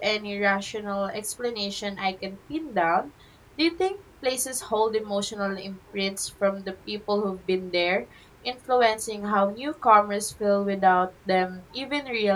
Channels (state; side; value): identical; both; correlation 1.00